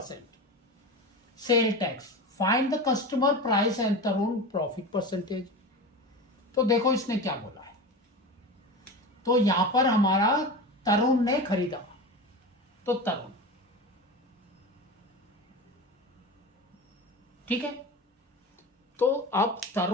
sale tax. Find the customer price and Tarun profit percentage. तो देखो इसने क्या बोला है। तो यहां पर हमारा तरुण ने खरीदा, तो तरुण, ठीक है। तो अब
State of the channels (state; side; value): normal; both; correlation 0.27